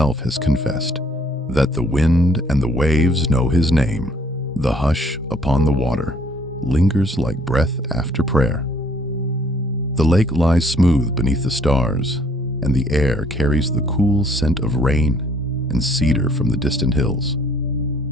has confessed, that the wind and the waves know his name. The hush upon the water lingers like breath after prayer. The lake lies smooth beneath the stars, and the air carries the cool scent of rain and cedar from the distant hills.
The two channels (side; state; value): both; normal; correlation 0.62